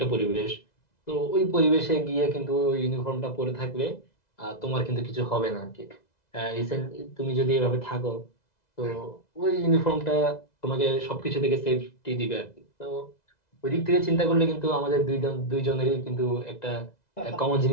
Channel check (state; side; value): late; right; 2.0 ms